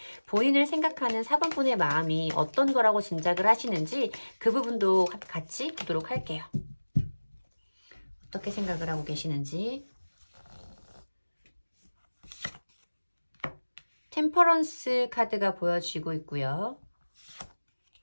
본인을 생각하는 4번 분의 마음이 어떤 거라고 짐작을 하시는지 그 부분도 같이 보도록 할게요. 어떻게 생각을 하고 계시는지. 템퍼런스 카드가 보여지고 있고요.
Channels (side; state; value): both; inverted; correlation -1.00